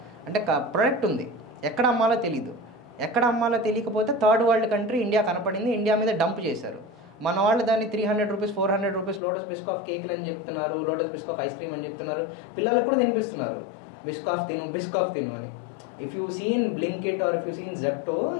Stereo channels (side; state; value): right; drops out; at 9.2 s